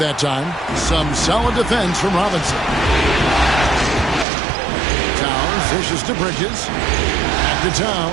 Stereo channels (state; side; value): drops out; left; at 4.2 s